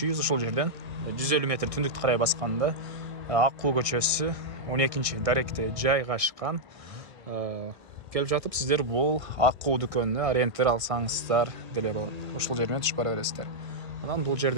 үй ушул жерден 150 метр түндүктү карай басканда Аккуу көчөсү 12 даректе жайгашкан. Келип жатып сиздер бул Аккуу дүкөнүнө ориентир алсаңыздар деле болот. Ошол жер менен түшүп бара бересиздер. Анан бул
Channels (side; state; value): left; late; 1.5 ms